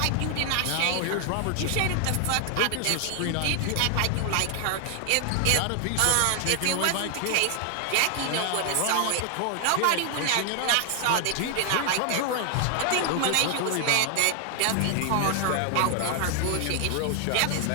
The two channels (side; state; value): both; different; correlation 0.00